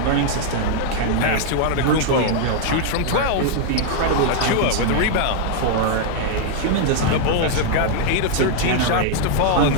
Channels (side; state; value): both; different; correlation -0.01